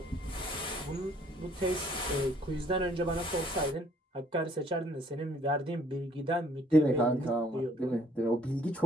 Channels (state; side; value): normal; both; correlation 0.61